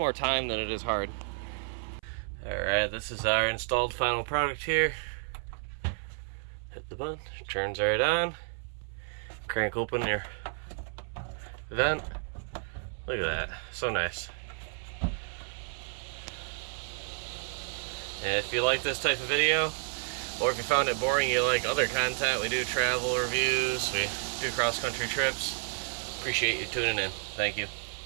time than it is hard. Alright, this is our installed final product here. Hit the button, turns right on. Crank open your vent. Look at that, so nice. And if you like this type of video, or if you found it boring, you like other content, we do travel reviews, we do cross-country trips. Appreciate you tuning in. Thank you.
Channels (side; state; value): left; silent; 57 dB below the other